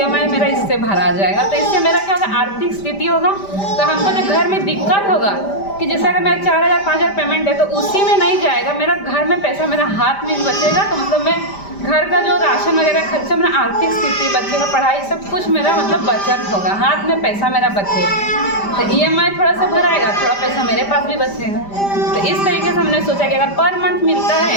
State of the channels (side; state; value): right; late; 5.0 ms